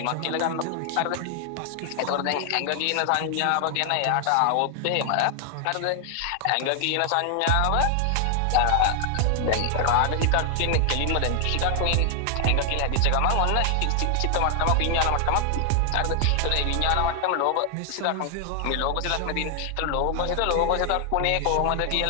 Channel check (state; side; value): different; both; correlation 0.00